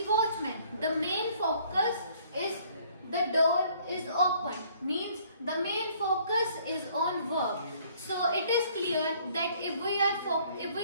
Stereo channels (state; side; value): inverted; both; correlation -0.60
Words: watchman. The main focus is the door is opened, means the main focus is on verb. So it is clear that if we